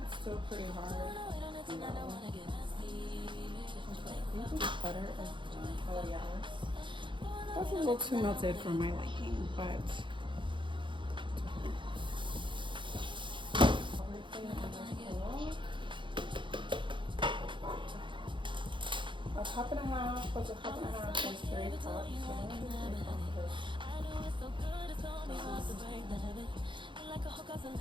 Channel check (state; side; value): late; left; 0.23 ms